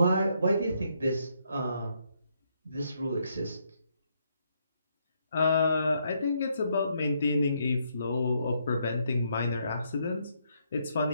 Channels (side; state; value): both; inverted; correlation -0.75